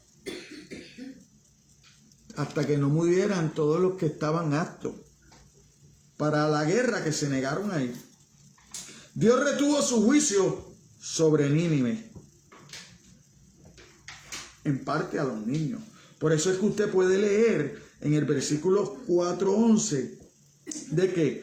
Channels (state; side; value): identical; both; correlation 1.00